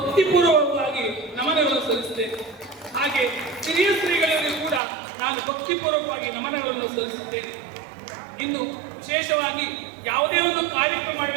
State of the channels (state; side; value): drops out; left; at 4.8 s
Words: ನಮನಗಳನ್ನು ಸಲ್ಲಿಸುತ್ತೇನೆ. ಹಾಗೆ ಹಿರಿಯ ಶ್ರೀಗಳಿಗೂ ಕೂಡ ನಾನು ಭಕ್ತಿಪೂರ್ವಕವಾಗಿ ನಮನಗಳನ್ನು ಸಲ್ಲಿಸುತ್ತೇನೆ. ಇನ್ನು ವಿಶೇಷವಾಗಿ ಯಾವುದೇ ಒಂದು ಕಾರ್ಯಕ್ರಮ